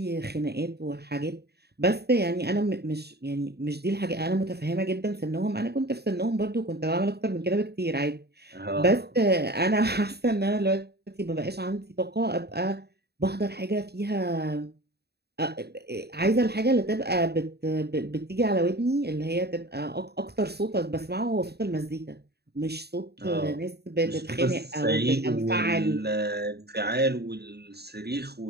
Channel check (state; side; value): late; left; 0.47 ms